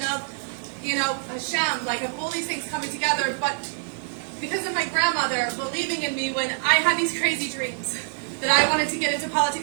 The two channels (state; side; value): silent; left; digital silence